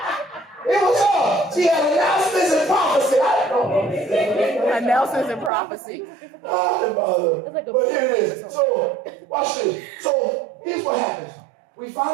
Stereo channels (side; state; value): left; drops out; at 5.5 s